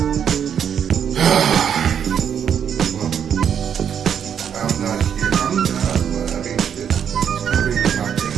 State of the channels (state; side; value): quieter; left; 8.3 dB